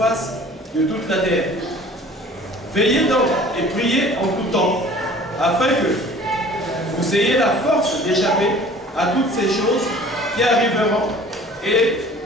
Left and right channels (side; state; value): both; normal; correlation 0.48